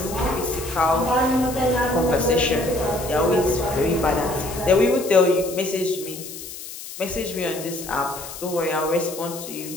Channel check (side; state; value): left; noise; hiss, 12 dB below the sound